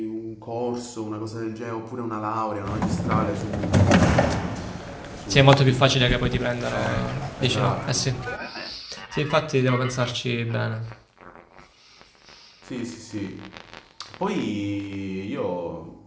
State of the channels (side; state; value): both; identical; correlation 1.00